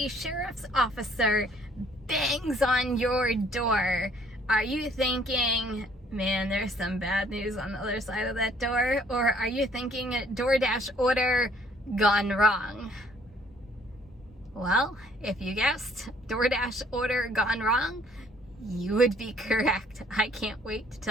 sheriff's officer bangs on your door, are you thinking, man, there's some bad news on the other side of that door? Or are you thinking DoorDash order gone wrong? Well, if you guessed DoorDash order gone wrong, you would be correct. I can't wait to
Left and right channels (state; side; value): normal; both; correlation 0.60